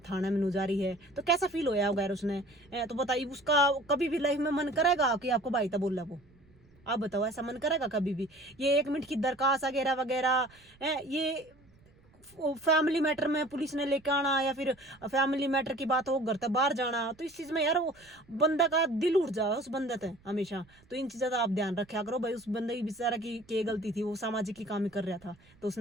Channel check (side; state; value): right; noise; rumble, 29 dB below the sound